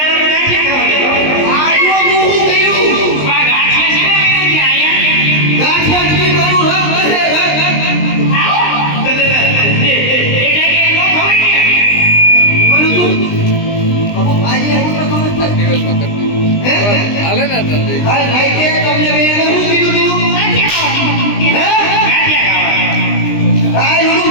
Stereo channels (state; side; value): late; right; 20 ms